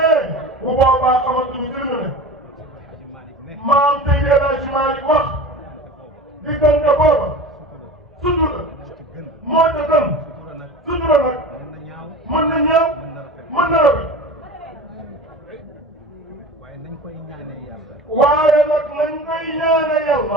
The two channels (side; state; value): both; normal; correlation 0.34